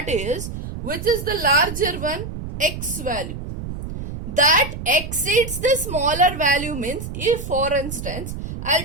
is, which is the larger one? X value. That exceeds the smaller value means, if for instance,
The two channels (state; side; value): noise; right; rumble, 8 dB below the sound